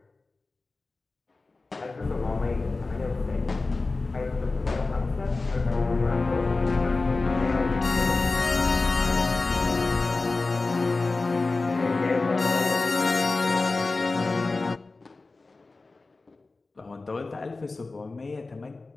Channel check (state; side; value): quieter; right; 3.6 dB